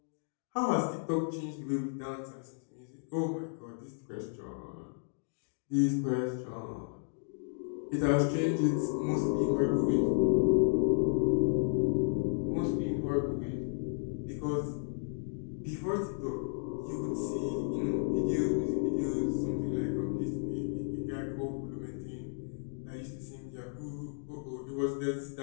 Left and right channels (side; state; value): right; silent; digital silence